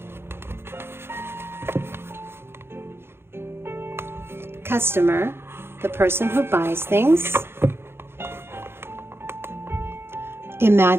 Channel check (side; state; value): left; late; 0.11 ms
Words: Customer, the person who buys things.